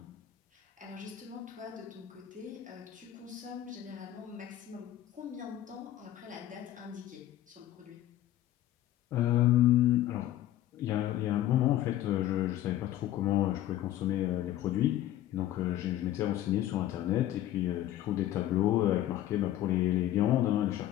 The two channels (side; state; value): right; quieter; 13.2 dB